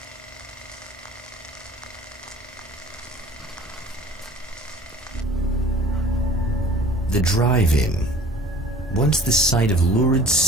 The drive-in. Once the site of lurid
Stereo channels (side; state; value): both; normal; correlation 0.46